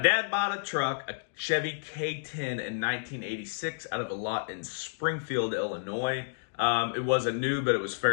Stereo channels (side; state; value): right; silent; digital silence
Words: bought a truck, a Chevy K10 in 1986 out of a lot in Springfield, Illinois. It wasn't new, but it was